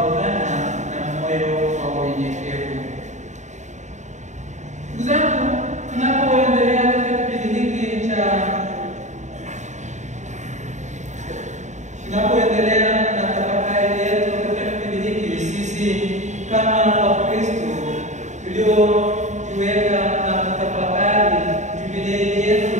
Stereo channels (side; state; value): left; late; 0.34 ms